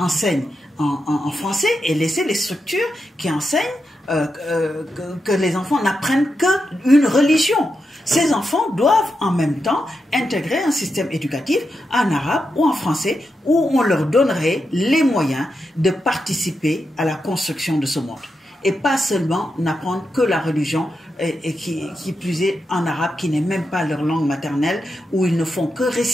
en français et laisser les structures qui enseignent que les enfants n'apprennent qu'une religion? Ces enfants doivent en même temps intégrer un système éducatif en arabe ou en français où on leur donnerait les moyens de participer à la construction de ce monde. Et pas seulement n'apprendre que la religion et qui plus est en arabe, qui n'est même pas leur langue maternelle, où ils ne font que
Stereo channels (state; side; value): normal; both; correlation 0.86